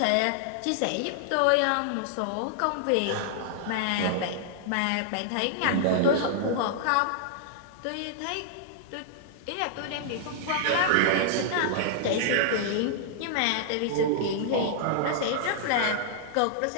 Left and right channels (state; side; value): different; both; correlation -0.01